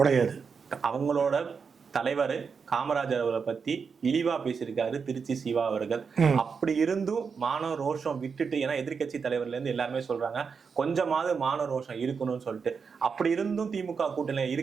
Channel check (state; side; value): quieter; left; 5.7 dB